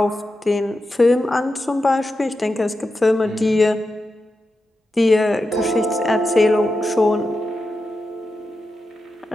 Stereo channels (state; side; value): normal; both; correlation 0.89